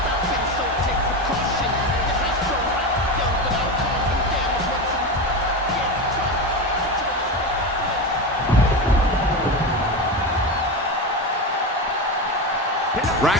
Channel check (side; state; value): both; normal; correlation 0.20